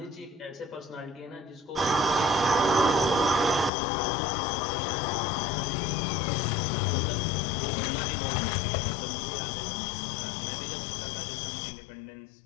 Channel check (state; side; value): drops out; right; at 3.7 s